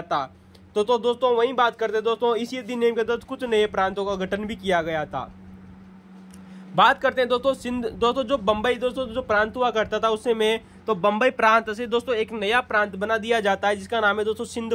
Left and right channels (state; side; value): identical; both; correlation 1.00